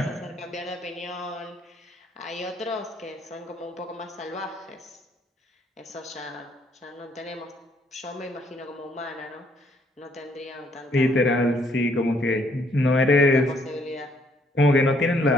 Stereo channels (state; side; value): normal; both; correlation 0.67